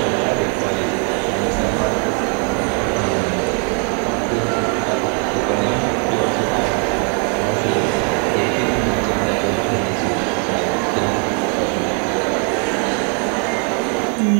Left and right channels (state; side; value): quieter; left; 37.9 dB